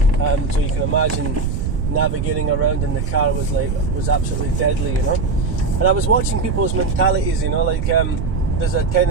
So you can imagine navigating around in the car was absolutely deadly, you know. And I was watching people's mentalities, you know, like there's a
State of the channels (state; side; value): noise; right; rumble, 1 dB below the sound